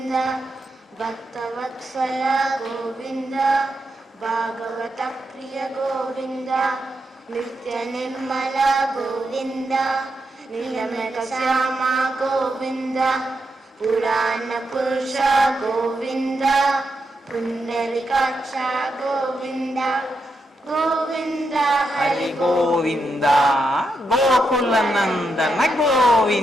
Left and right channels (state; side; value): normal; both; correlation 0.84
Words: భక్తవత్సల గోవింద భాగవత ప్రియ గోవింద నిత్య నిర్మల గోవింద నీలమేఘ శ్యామ గోవింద పురాణ పురుష గోవింద పుండరీకాక్ష గోవింద గోవింద హరి గోవింద గోకుల నందన